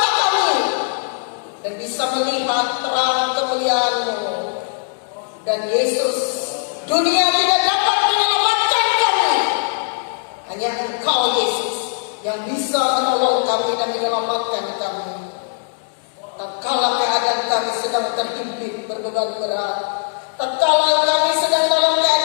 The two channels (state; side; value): silent; right; 66 dB below the other